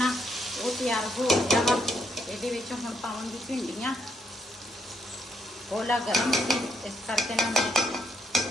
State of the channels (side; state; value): both; normal; correlation 0.74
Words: ਉਹ ਤਿਆਰ ਹੋ ਗਿਆ ਵਾ। ਇਹਦੇ ਵਿੱਚ ਹੁਣ ਪਾਵਾਂਗੀ ਭਿੰਡੀਆਂ। ਕੋਲਾ ਗਰਮ ਸੀ ਇਸ ਕਰਕੇ ਨਾ ਮੈਂ